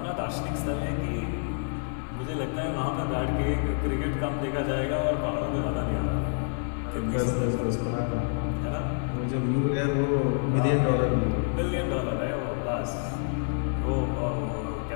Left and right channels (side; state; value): right; silent; 59 dB below the other